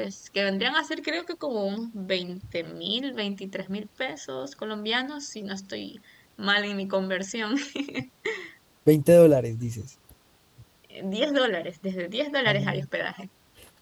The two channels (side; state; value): both; identical; correlation 1.00